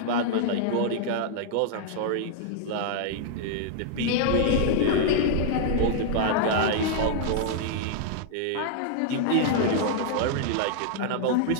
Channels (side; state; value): both; different; correlation -0.01